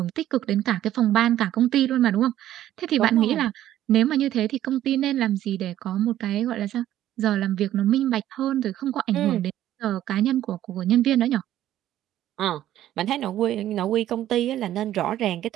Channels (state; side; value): quieter; left; 12.7 dB